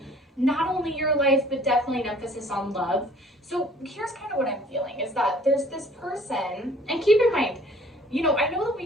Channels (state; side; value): normal; both; correlation 0.54